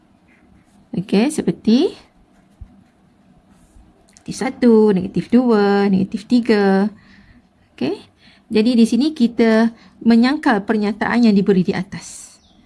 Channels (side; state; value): both; identical; correlation 1.00